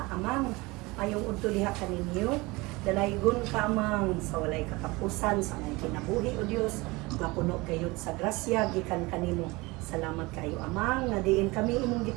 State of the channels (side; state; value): left; quieter; 23.4 dB